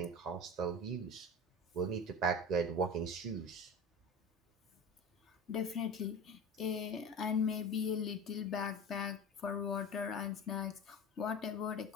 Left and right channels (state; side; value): normal; both; correlation 0.31